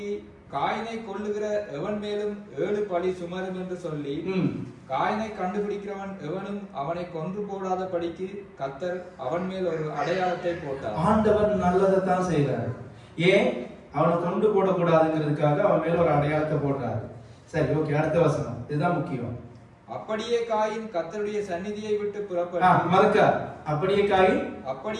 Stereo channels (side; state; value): both; identical; correlation 1.00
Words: காயினை கொல்லுகிற எவன் மேலும் 7 பழி சுமரும் என்று சொல்லி காயினை கண்டுபிடிக்கிறவன் எவனும் அவனை கொன்று போடாத படிக்கு கர்த்தர் அவன் மேல் ஒரு அடையாளத்தை போட்டார். ஆண்டவர் நல்லதைத்தான் செய்யறாரு. ஏன்? அவனை கொண்டு போடக்கூடாதுங்கிறதுக்காக அவன் மேல ஒரு அடையாளத்தை போடுறாரு. சரி, ஓகே, அடுத்த வசனம், இதுதான் முக்கியம். அப்படியே காயின் கர்த்தருடைய சந்நிதியை விட்டு புறப்பட்டு அப்படியே காயின்